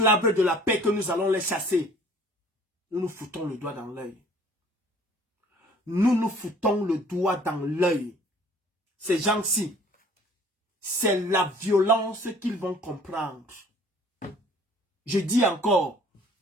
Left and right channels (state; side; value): normal; both; correlation 0.53